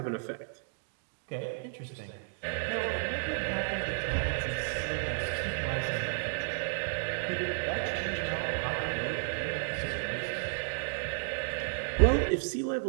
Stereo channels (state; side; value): silent; left; digital silence